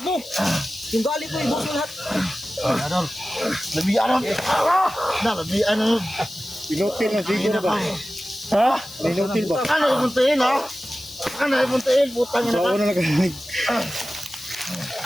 mo. Yung gali ko, ibuhos mo lahat. Adol. Lebih ano? Na, lebih ano? Pinutil na Zigo na ba? Ha? Pinutil ba? Ano yung muntiin, ha? Ano yung muntiin? Putang ina So, ka. ano na kanilig?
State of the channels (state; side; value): noise; left; hiss, 18 dB below the sound